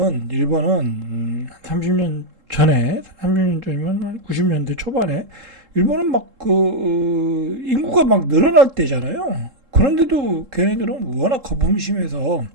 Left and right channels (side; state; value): left; late; 3.7 ms